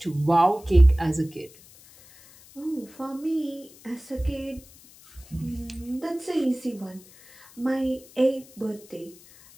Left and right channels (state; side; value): noise; left; hiss, 24 dB below the sound